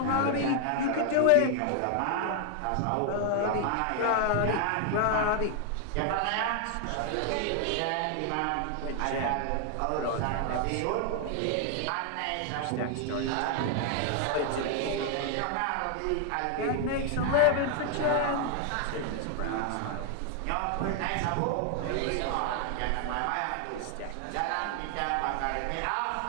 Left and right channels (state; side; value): different; both; correlation 0.00